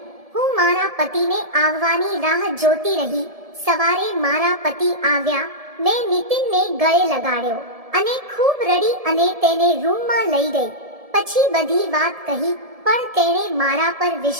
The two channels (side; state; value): left; late; 1.7 ms